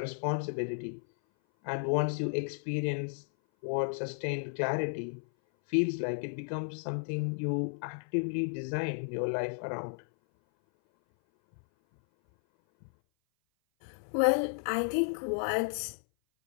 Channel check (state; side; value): silent; right; 56 dB below the other